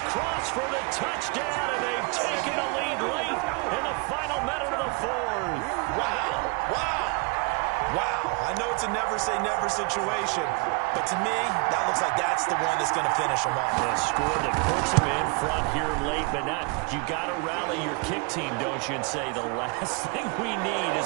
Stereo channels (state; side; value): quieter; left; 30.7 dB